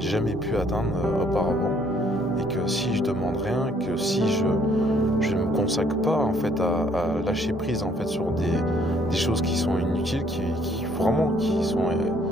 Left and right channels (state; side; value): normal; both; correlation 0.64